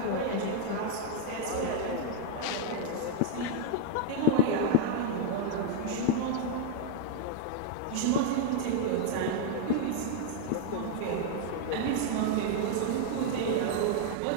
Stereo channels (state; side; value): different; both; correlation 0.00